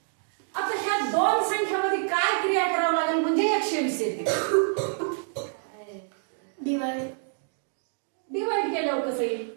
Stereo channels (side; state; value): left; silent; 60 dB below the other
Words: आता ह्या दोन संख्यामध्ये काय क्रिया करावं लागेल म्हणजे 120 येते. डिवाइड केल्यावर कसं येईल?